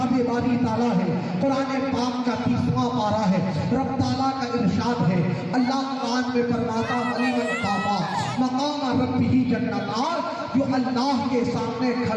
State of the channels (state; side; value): identical; both; correlation 1.00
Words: बारी ताला है, कुरान पाक का 30वां पारा है। रब ताला का इरशाद है, अल्लाह कुरान में फरमाता अलीमन कामा मकाम रब्बिही जन्नतार, जो अल्लाह के सामने